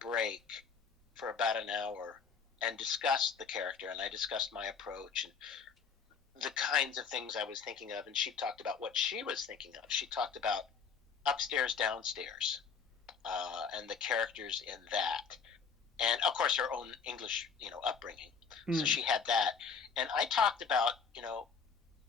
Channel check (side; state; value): right; quieter; 5.9 dB